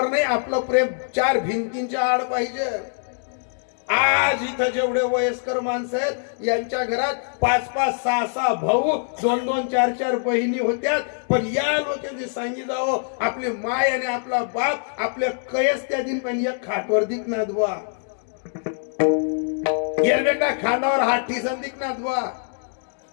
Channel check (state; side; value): silent; right; digital silence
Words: नाही, आपलं प्रेम 4 भिंतींच्या आड पाहिजे. आज इथं जेवढे वयस्कर माणसं आहेत यांच्या घरात 5-5, 6-6 भाऊ, 2-2, 4-4 बहिणी होत्या. पण या लोकांनी सांगी जावं आपली माय आणि आपला बाप आपल्या कयस त्या दिन पण एक खाटवर दिखनात बुवा, येर बेटा खांदावर हात ठिसन दिखनात बुवा.